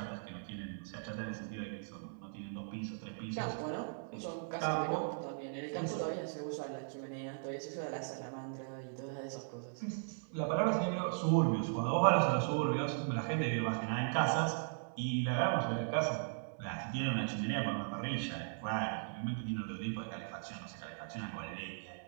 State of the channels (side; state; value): left; silent; 52 dB below the other